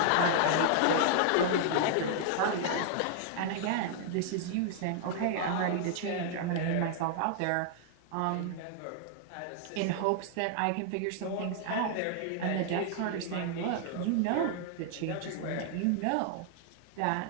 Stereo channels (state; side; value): different; both; correlation -0.01